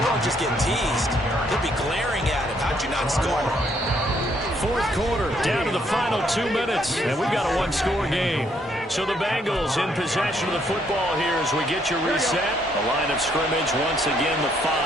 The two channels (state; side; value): normal; both; correlation 0.70